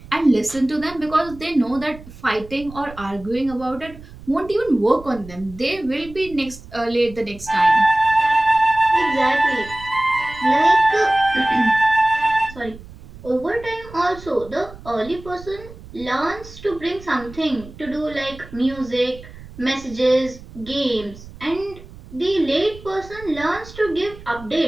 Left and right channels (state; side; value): noise; right; rumble, 18 dB below the sound